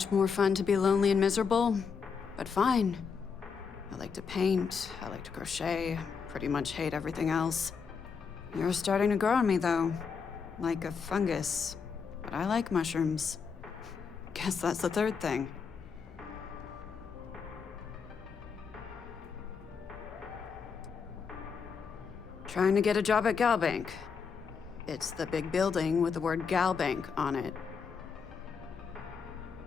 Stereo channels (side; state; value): right; quieter; 5.9 dB